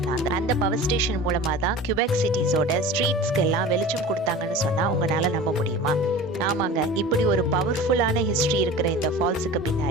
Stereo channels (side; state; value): both; normal; correlation 0.37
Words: அந்த பவர் ஸ்டேஷன் மூலமா தான் கியூபெக் சிட்டிஸோட ஸ்ட்ரீட்ஸ்க்கு எல்லாம் வெளிச்சம் கொடுத்தாங்கன்னு சொன்னா உங்களால நம்ப முடியுமா? ஆமாங்க, இப்படி ஒரு பவர்ஃபுல்லான ஹிஸ்டரி இருக்கிற இந்த ஃபால்ஸுக்கு